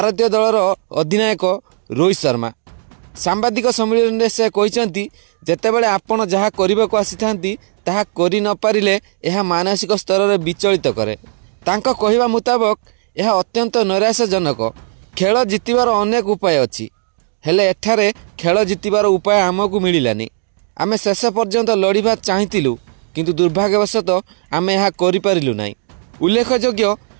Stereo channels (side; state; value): left; silent; digital silence